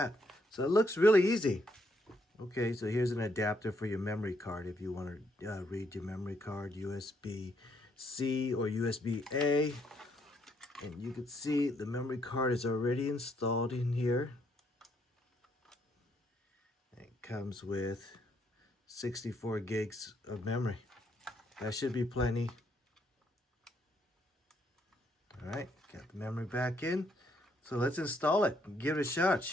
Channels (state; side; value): normal; both; correlation 0.73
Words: So it looks really easy. Okay, so here's an adapter for your memory card if you want to read your memory card, USB-C or USB-A. And you can see the memory card is already installed in here. It comes with 64 gigs of memory. That should be plenty. All right, got the memory back in. So let's install it and give it a shot. It